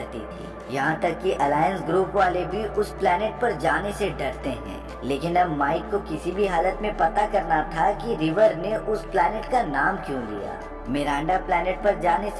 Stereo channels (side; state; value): both; identical; correlation 1.00